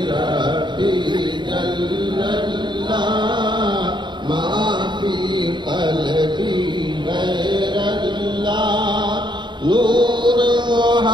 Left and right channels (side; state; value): left; late; 0.22 ms